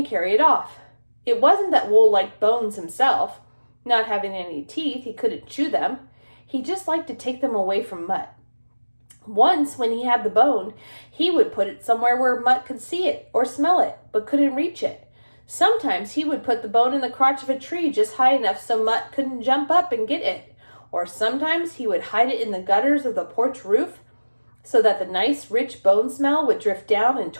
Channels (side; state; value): both; inverted; correlation -1.00